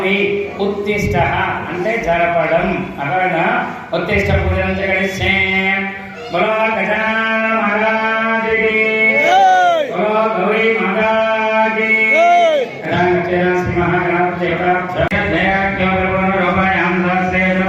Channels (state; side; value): identical; both; correlation 1.00